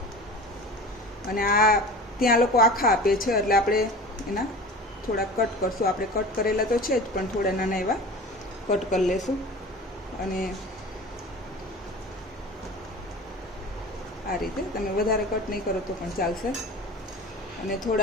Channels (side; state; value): both; normal; correlation 0.36